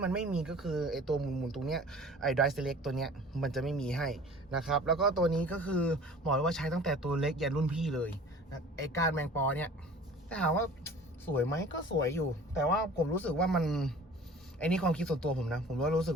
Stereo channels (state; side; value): normal; both; correlation 0.45